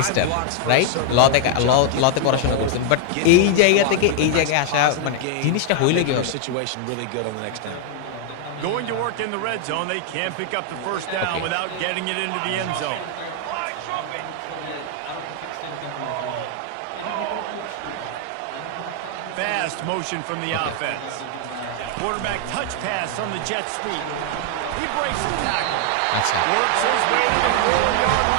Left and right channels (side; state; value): both; different; correlation 0.00